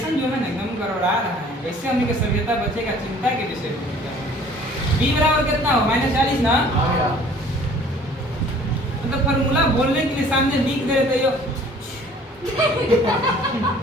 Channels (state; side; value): normal; both; correlation 0.52